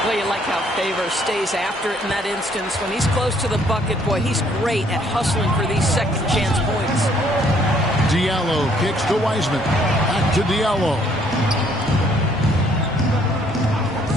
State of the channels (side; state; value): both; normal; correlation 0.64